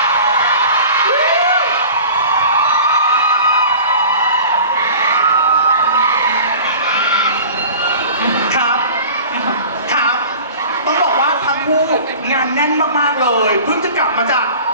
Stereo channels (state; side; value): inverted; both; correlation -0.40